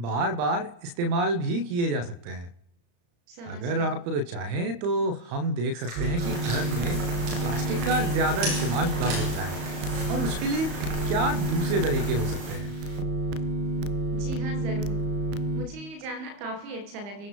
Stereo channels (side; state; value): left; late; 35 ms